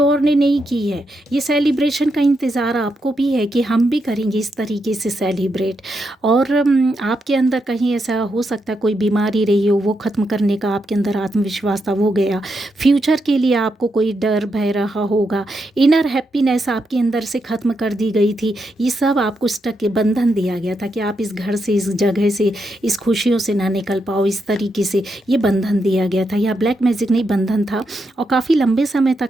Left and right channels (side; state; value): both; normal; correlation 0.83